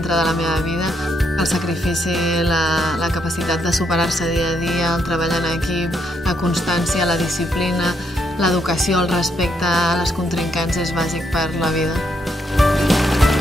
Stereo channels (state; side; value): normal; both; correlation 0.76